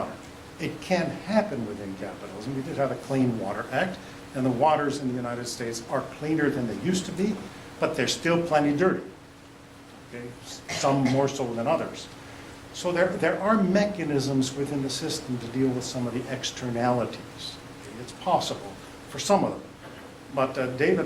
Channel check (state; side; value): identical; both; correlation 1.00